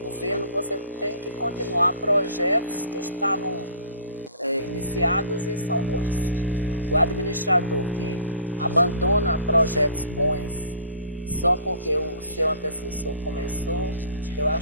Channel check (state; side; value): inverted; both; correlation -0.47